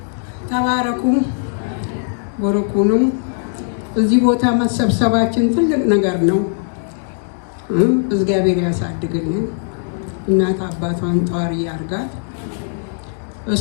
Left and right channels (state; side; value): silent; right; digital silence